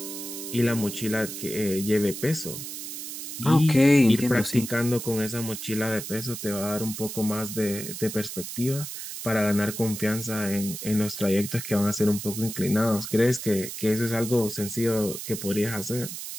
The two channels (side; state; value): right; noise; hiss, 8 dB below the sound